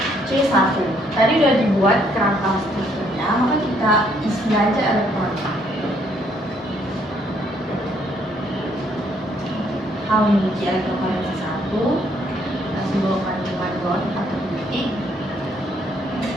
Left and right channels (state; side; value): normal; both; correlation 0.68